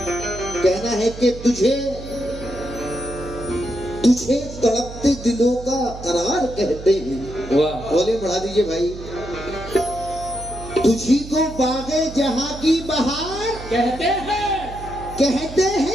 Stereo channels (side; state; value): right; noise; hum, 13 dB below the sound